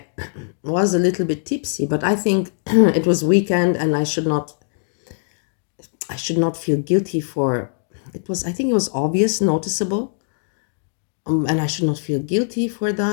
was a little bit tipsy, but I think it was weekend and I should not feel guilty for it. I think it was obvious, noticeable, and I should not feel guilty for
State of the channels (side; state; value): right; silent; digital silence